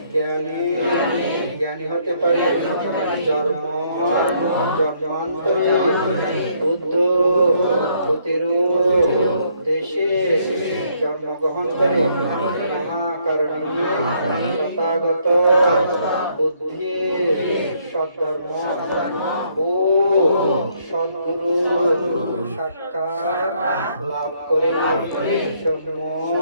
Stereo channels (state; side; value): inverted; both; correlation -0.69